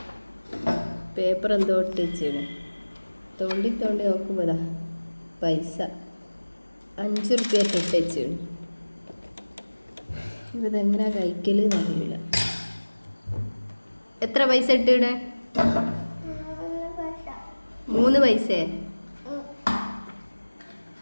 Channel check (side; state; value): both; inverted; correlation -1.00